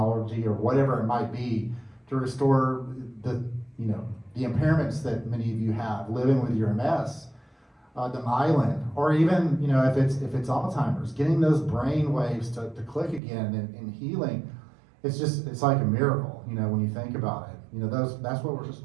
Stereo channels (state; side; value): drops out; left; at 13.2 s